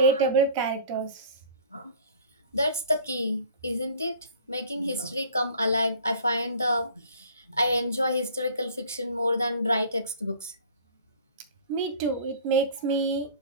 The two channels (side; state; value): both; inverted; correlation -0.47